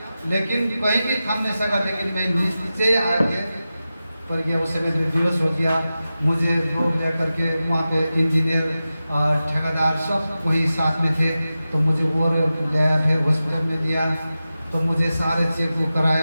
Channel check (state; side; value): inverted; both; correlation -0.94